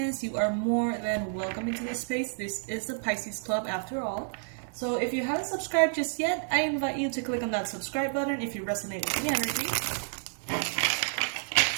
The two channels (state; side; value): silent; left; 58 dB below the other